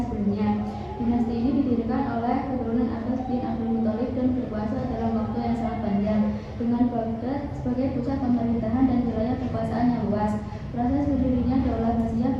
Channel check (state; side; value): identical; both; correlation 1.00